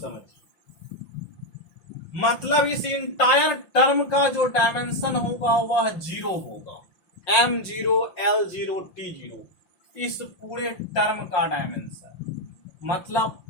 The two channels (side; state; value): right; late; 5.8 ms